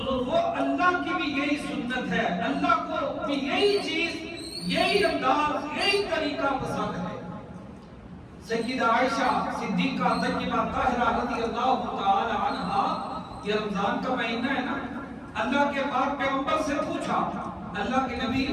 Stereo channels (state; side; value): identical; both; correlation 1.00